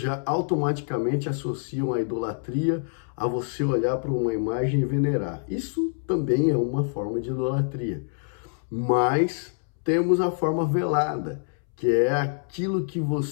automaticamente associam a idolatria a você olhar para uma imagem e venerar. Isso também é uma forma de idolatria. Mas temos a forma velada, que é aquilo que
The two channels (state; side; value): silent; right; 61 dB below the other